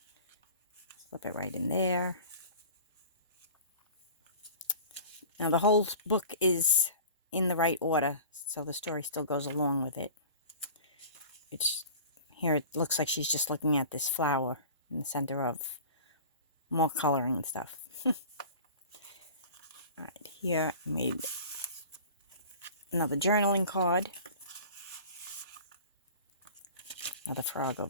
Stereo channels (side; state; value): both; inverted; correlation -0.40